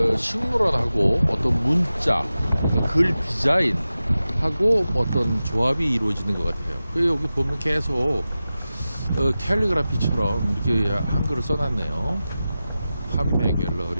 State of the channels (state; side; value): inverted; both; correlation -0.94